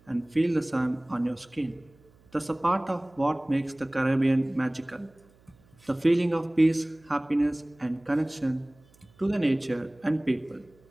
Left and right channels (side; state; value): right; noise; hum, 30 dB below the sound